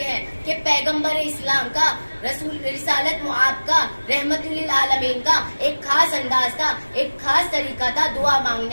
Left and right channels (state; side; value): inverted; both; correlation -1.00